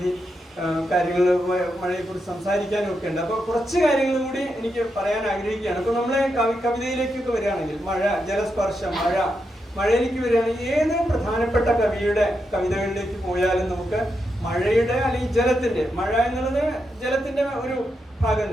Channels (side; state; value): both; normal; correlation 0.84